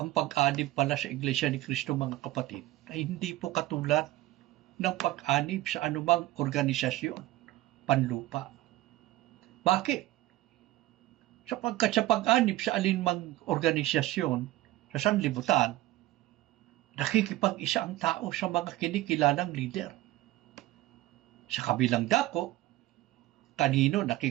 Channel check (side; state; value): left; quieter; 16.8 dB